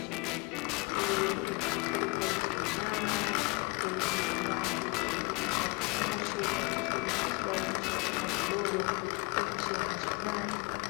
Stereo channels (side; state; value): right; quieter; 28.5 dB